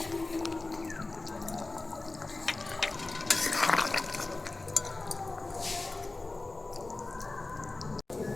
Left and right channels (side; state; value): right; quieter; 3.2 dB